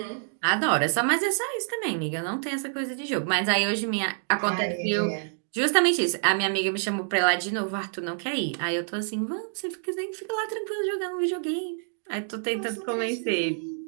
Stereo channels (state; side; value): silent; left; digital silence